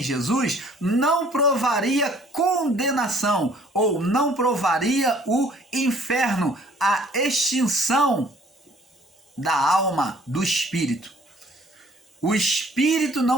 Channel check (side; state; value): both; normal; correlation 0.57